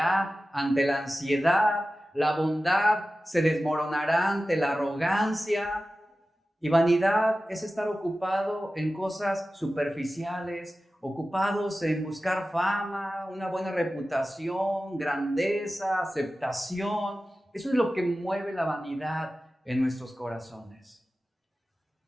ante la ansiedad, la bondad se desmoronará ante la arrogancia. Y vanidad es estar ocupado en cosas superficiales, ocupados en buscar fama, una buena reputación, grandeza, aceptación. Eso es lo que mueve la vanidad en nuestros corazones.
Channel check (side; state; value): both; normal; correlation 0.95